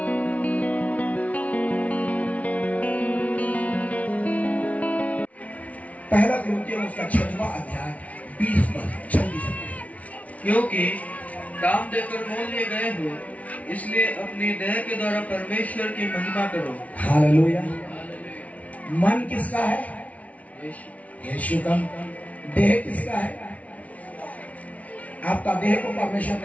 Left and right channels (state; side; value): late; right; 0.068 ms